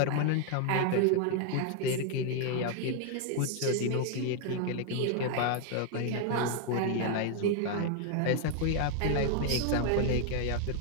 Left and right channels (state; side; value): different; both; correlation 0.00